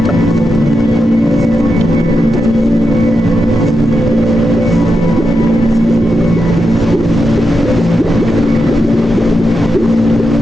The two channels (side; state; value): both; normal; correlation 0.87